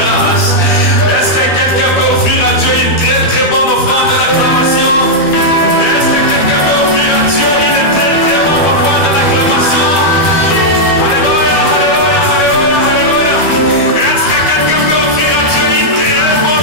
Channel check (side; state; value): right; late; 13 ms